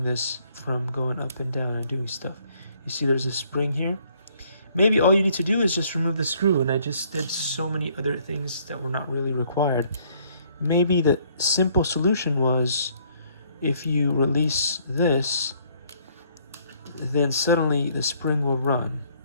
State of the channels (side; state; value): both; inverted; correlation -0.64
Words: this from going up and down and doing stuff. You see there's a spring here. Maybe all you need to do is just remove the screw, and I just did so many other things that were not really required. Maybe the simple solution was if you release this, then suddenly the spring will run.